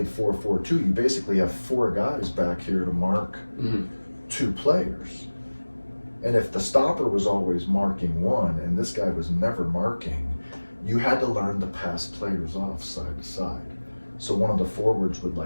4-4-2, you basically have four guys back here to mark two players. And if the stopper was always marking one and this guy was never marking, you had to learn to pass players off side to side. So one of the forwards would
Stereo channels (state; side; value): inverted; both; correlation -1.00